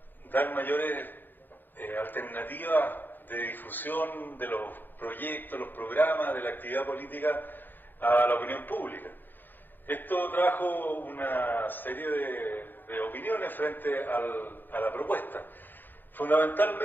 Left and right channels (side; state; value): right; late; 0.091 ms